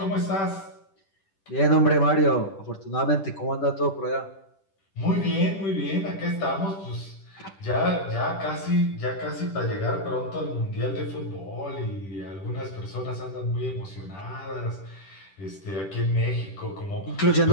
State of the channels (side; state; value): right; late; 10 ms